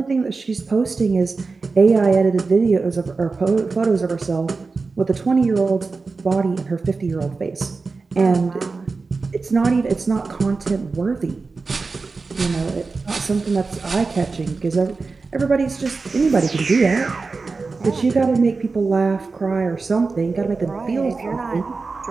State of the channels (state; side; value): quieter; left; 4.2 dB